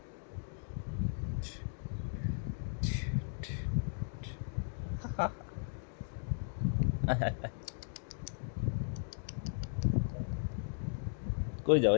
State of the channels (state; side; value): silent; right; digital silence